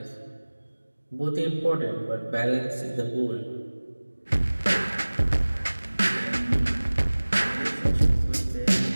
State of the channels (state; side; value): inverted; both; correlation -1.00